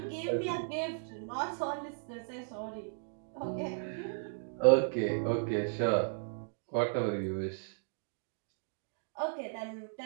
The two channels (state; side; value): silent; left; digital silence